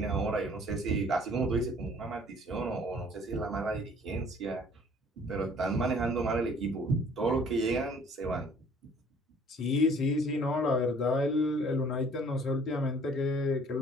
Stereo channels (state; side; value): normal; both; correlation 0.55